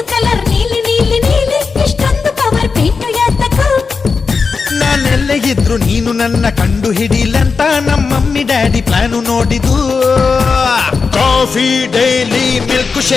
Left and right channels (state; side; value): quieter; right; 4.9 dB